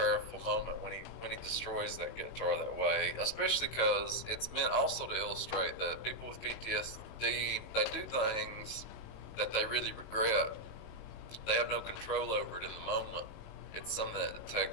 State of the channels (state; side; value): late; right; 18 ms